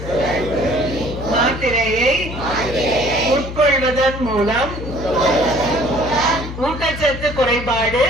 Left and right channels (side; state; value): left; noise; hum, 9 dB below the sound